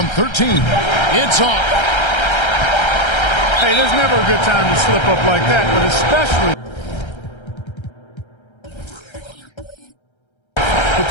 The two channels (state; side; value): late; right; 1.3 ms